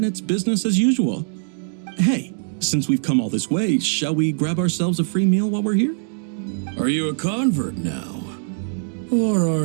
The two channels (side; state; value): left; silent; digital silence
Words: it's business as usual. Hey, since we've come all this way, shall we grab ourselves a free meal while we're here? Are you a convert now? Or